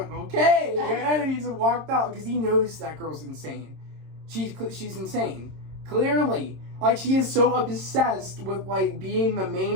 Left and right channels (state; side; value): late; left; 26 ms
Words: okay, and then he just walked out because he knows that girl's insane. She's insane, clearly. Like, she is so obsessed with like being the